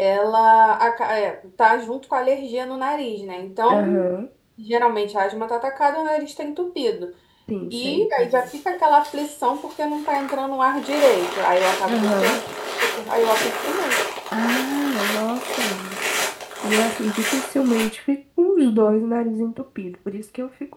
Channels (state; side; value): identical; both; correlation 1.00